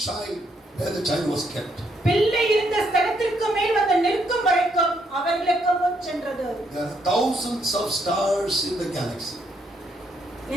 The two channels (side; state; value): both; normal; correlation 0.74